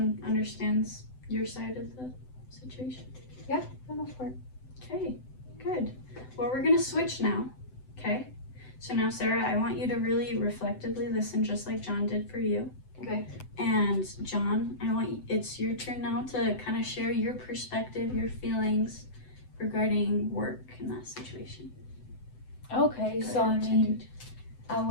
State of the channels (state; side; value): late; right; 7.9 ms